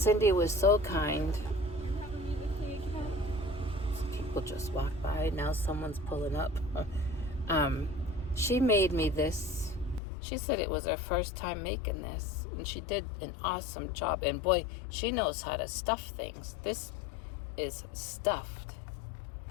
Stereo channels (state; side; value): drops out; right; at 10.0 s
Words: was so kind. People just walk by. Now someone's pulling up. She made me this. She said it was her first time making this, and she did an awesome job. And boy, she knows how to stuff things. This is stuffed.